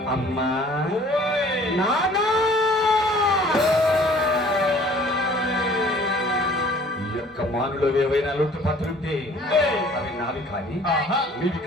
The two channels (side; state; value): both; normal; correlation 0.52